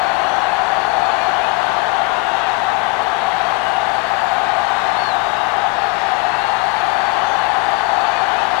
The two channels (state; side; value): quieter; right; 26.4 dB